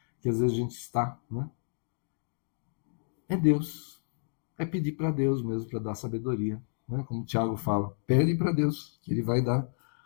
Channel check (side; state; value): right; silent; digital silence